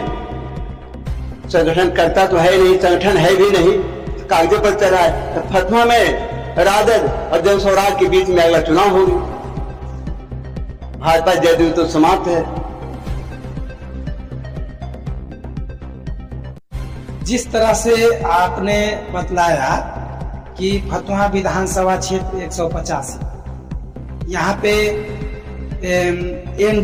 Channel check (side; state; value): both; identical; correlation 1.00